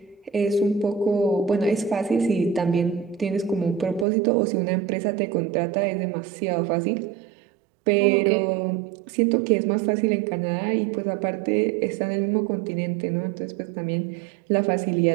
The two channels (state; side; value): drops out; left; at 4.0 s